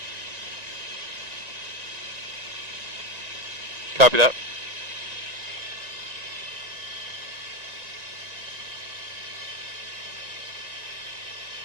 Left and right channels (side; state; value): left; late; 1.9 ms